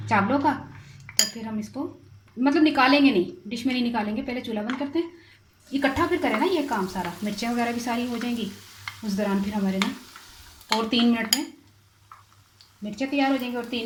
चावलों का, तो फिर हम इसको मतलब निकालेंगे नहीं, डिश में नहीं निकालेंगे, पहले चूल्हा बंद करते हैं। इकट्ठा फिर करें ना ये काम सारा, मिर्चें वगैरह भी सारी हो जाएंगी उस दौरान फिर हमारे ना, और 3 मिनट में मिर्चें तैयार हो जाएंगी और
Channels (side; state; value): both; identical; correlation 1.00